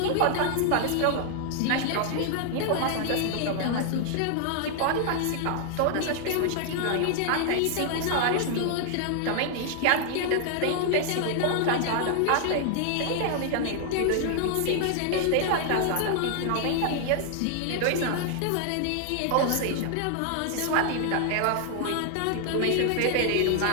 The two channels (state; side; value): different; both; correlation 0.00